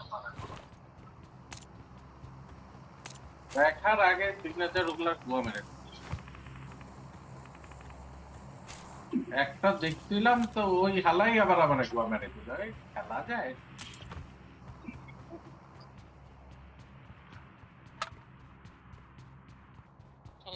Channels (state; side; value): identical; both; correlation 1.00